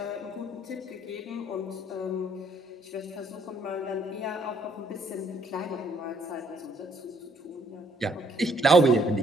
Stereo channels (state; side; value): normal; both; correlation 0.67